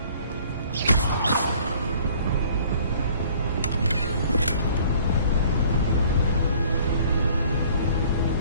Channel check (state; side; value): inverted; both; correlation -0.54